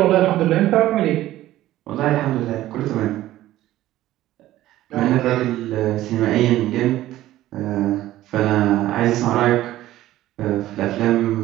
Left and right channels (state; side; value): quieter; left; 14.8 dB